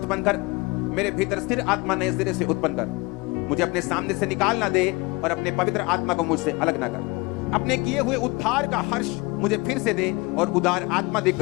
कर, मेरे भीतर स्थिर आत्मा नए सिरे से उत्पन्न कर। मुझे अपने सामने से निकाल ना दे और अपने पवित्र आत्मा को मुझसे अलग ना कर। अपने किए हुए उद्धार का हर्ष मुझे फिर से दे और उदार आत्मा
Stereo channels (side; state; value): right; quieter; 25.1 dB